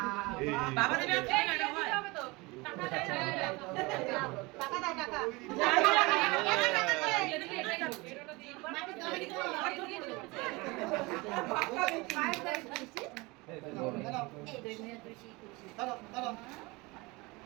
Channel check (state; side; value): quieter; left; 24.4 dB